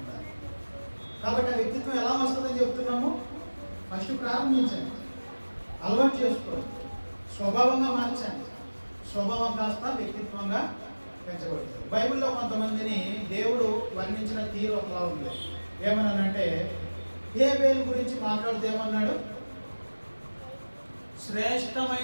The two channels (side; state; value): both; inverted; correlation -1.00